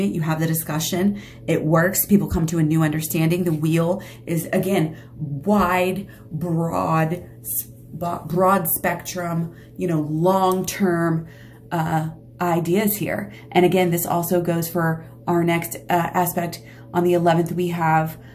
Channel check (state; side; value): identical; both; correlation 1.00